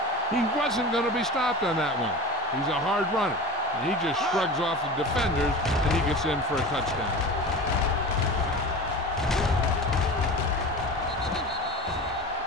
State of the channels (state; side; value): normal; both; correlation 0.33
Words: He wasn't going to be stopped on that one. He's a hard runner. And he just shrugs off the defenders, and he gets in for a touchdown.